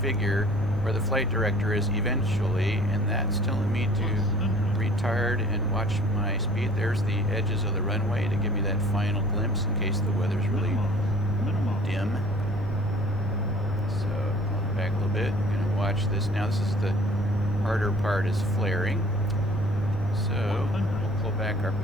where the flight director is eventually, and that's telling me to retard and watch my speed. There's the edges of the runway to give me that final glimpse in case the weather's really dim. So I'll back a little bit. I'm going to watch this now. This is the harder part, is flaring. So we'll pull back our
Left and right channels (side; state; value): both; normal; correlation 0.50